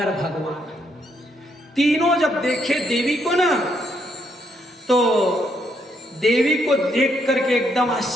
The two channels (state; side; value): normal; both; correlation 0.75